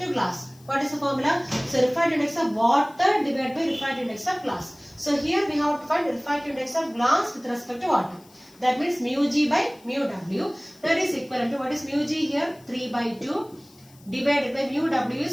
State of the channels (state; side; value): noise; left; hiss, 27 dB below the sound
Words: glass, what is the formula? So refractive index of water divided by refractive index of glass. So here we have to find refractive index of glass with respect to water. That means mu g by mu w. That is equivalent to, what is mu g here? 3 by 2 divided by mu w